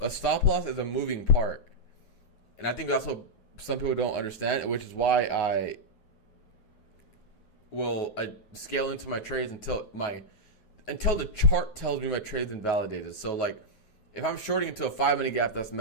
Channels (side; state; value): right; late; 9.1 ms